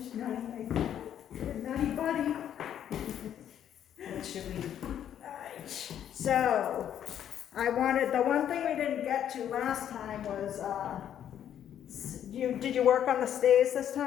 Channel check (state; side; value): quieter; right; 10.0 dB